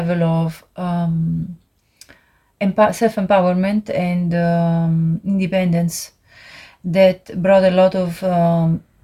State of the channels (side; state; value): both; identical; correlation 1.00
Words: of self-empowerment and independence that brought a lot of